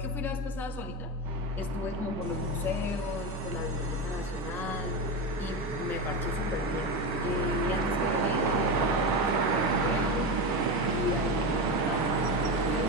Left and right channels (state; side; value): normal; both; correlation 0.18